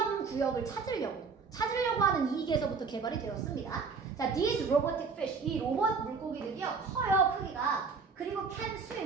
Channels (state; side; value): quieter; left; 5.0 dB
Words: 구역을 찾으려고 하는 이익에서부터 개발이 되었습니다. 자, these robotic fish 이 로봇 물고기들이요 커요 크기가. 그리고 can